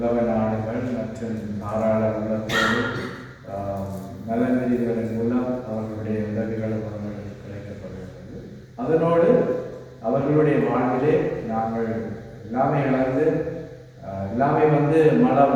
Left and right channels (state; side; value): identical; both; correlation 1.00